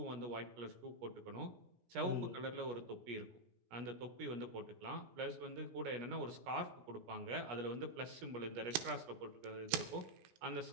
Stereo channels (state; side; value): late; left; 17 ms